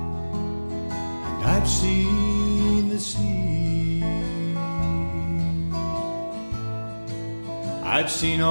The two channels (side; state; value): both; inverted; correlation -1.00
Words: and I've seen the sea. I've seen